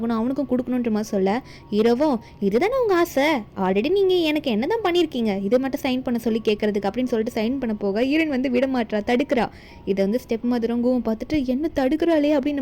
அவனுக்கும் கொடுக்கணுன்ற மாதிரி சொல்ல ஹீரோவும் இதுதானே உங்க ஆசை, ஆல்ரெடி நீங்க எனக்கு என்னதான் பண்ணியிருக்கீங்க, இதை மட்டும் சைன் பண்ண சொல்லி கேட்கறதுக்கு அப்படின்னு சொல்லிட்டு சைன் பண்ண போக ஹீரோயின் வந்து விட மாட்டா, தடுக்கிறா. இதை வந்து ஸ்டெப் மதரும் கூவும் பார்த்துட்டு என்ன தடுக்கிறாளே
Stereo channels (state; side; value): identical; both; correlation 1.00